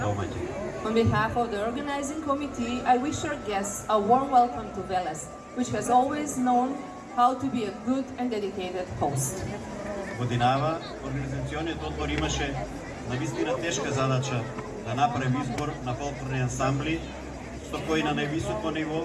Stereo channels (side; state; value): both; identical; correlation 1.00